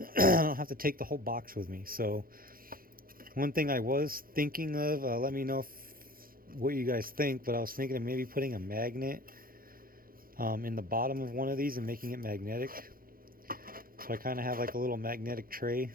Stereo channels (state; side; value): late; left; 0.42 ms